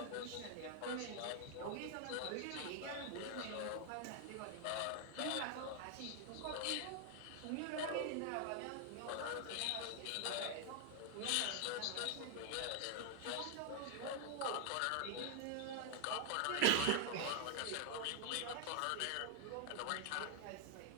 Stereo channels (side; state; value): both; different; correlation 0.00